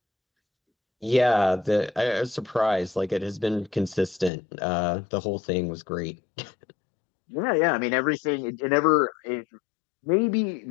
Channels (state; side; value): drops out; right; at 4.3 s